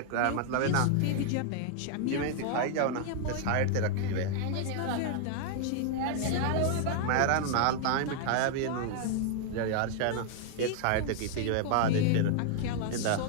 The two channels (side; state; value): both; different; correlation 0.00